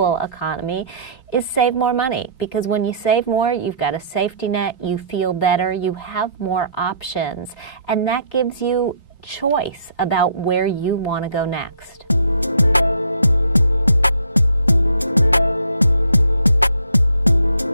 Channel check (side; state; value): both; inverted; correlation -0.59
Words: economy, is save more money. Because when you save more, you've got a safety net, you feel better, you have more options, and that gives you choice about where you want to go next.